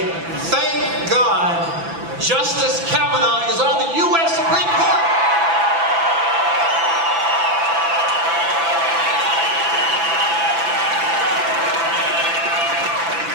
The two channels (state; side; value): late; left; 6.0 ms